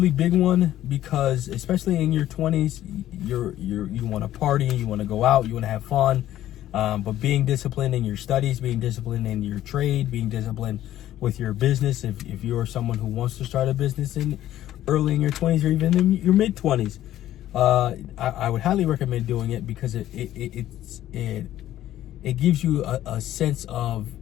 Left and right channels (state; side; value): quieter; right; 13.1 dB